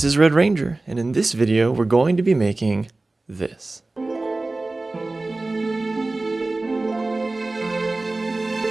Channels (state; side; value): quieter; left; 3.1 dB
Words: is Red Ranger, and in this video, we're going to be making this.